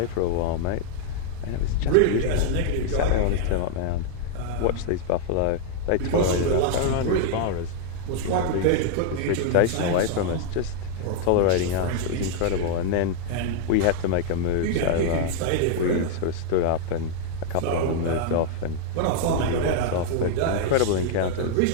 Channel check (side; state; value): both; different; correlation -0.01